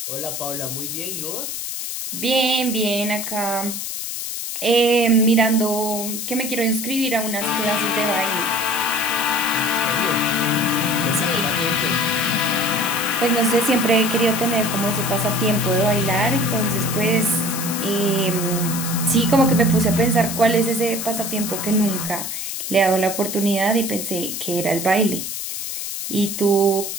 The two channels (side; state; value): left; noise; hiss, 5 dB below the sound